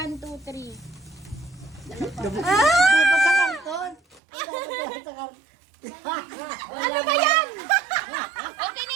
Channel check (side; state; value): left; drops out; at 4.2 s